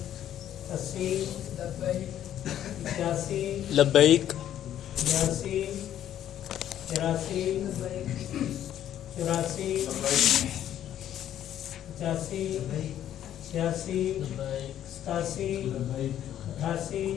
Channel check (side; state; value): right; quieter; 11.1 dB